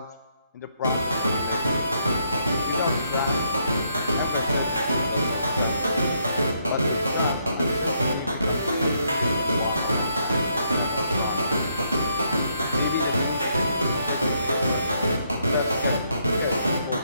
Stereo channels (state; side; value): inverted; both; correlation -0.74